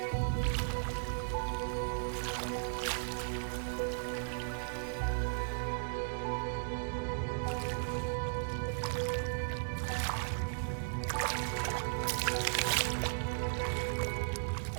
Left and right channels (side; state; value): left; silent; digital silence